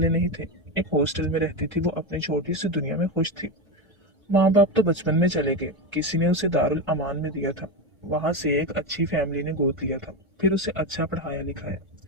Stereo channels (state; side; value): normal; both; correlation 0.15